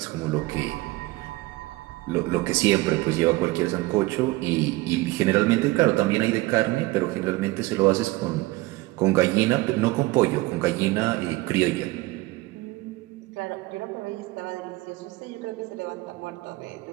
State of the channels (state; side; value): quieter; left; 20.3 dB